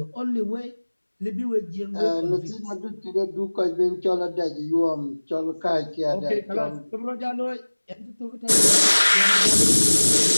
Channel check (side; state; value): both; inverted; correlation -1.00